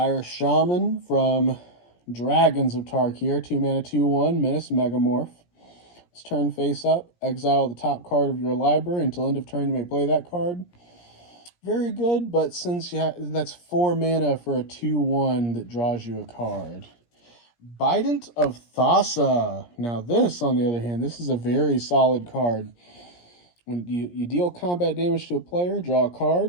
Shaman from Dragons of Tarkir. 2 mana, 2/1. Menace Megamorph. It's turn face up. Exile the top card of your library. Until end of turn, you may play that card. Very good, but since that's 4 mana for a 2/1 that draws you a card. Bident of Thassa. Now this, on the other hand, this is a very solid card. When you deal combat damage to a player, draw a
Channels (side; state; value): right; late; 17 ms